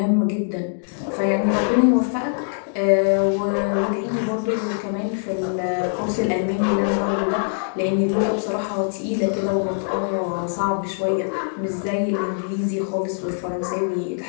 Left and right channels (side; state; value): right; silent; digital silence